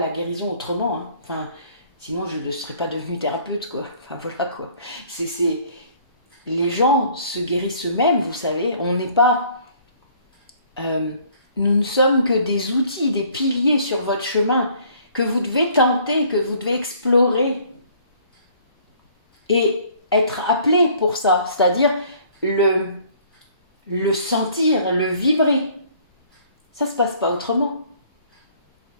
guérison autrement. Hein. Enfin, sinon, je ne serais pas devenue thérapeute, quoi. Enfin, voilà, quoi. Les gens se guérissent eux-mêmes, vous savez. On n'est pas... nous ne sommes que des outils, des piliers sur votre chemin que vous devez tenter, que vous devez explorer et être appelé pour ça. C'est-à-dire, le le sentir, le vibrer. Ça ne se passe pas autrement.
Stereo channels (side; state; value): both; inverted; correlation -0.58